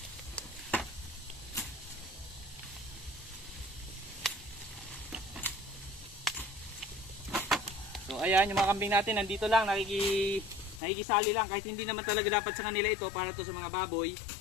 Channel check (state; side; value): drops out; right; at 10.8 s